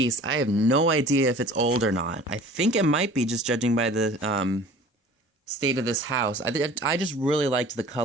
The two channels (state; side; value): normal; both; correlation 0.45